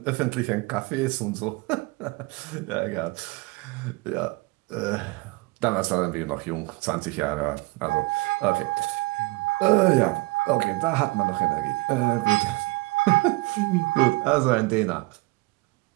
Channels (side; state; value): left; quieter; 23.9 dB